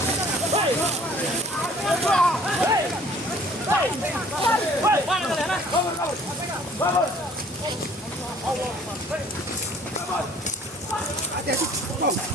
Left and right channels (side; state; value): both; normal; correlation 0.55